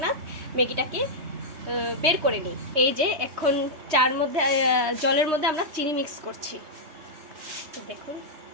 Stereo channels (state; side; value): late; left; 3.2 ms